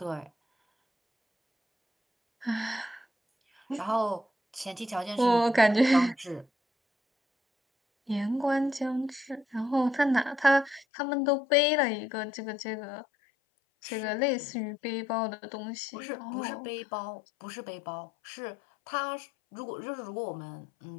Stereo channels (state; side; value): drops out; right; at 10.9 s